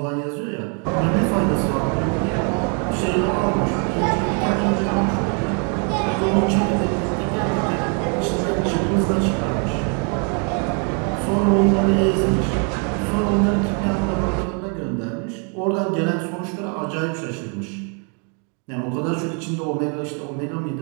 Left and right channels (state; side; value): quieter; left; 38.6 dB